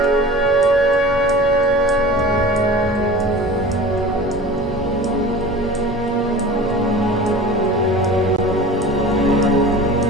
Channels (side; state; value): both; normal; correlation 0.37